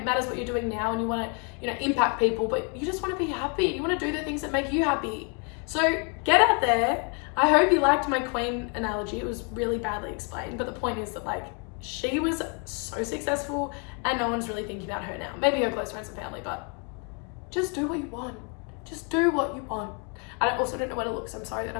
matters what you're doing now and you want to, you know, impact people, but you just want to be happy. You want to do the things that make you happy. So get out there. I hope you liked my Queen analogy. It was really badly explained, but the point is that, like, she was so successful and no one's really thinking about her now. Maybe her close friends and family, but just do what you want. Just do what you want. I also don't know where to look, so I'm sorry that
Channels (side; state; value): right; quieter; 36.5 dB